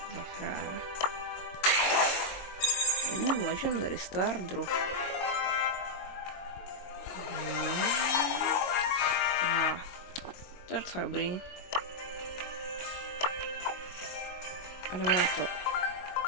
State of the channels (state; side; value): late; right; 22 ms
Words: za fráre. Legendary Star Drop. To je docela dobrý. A jdeme na to.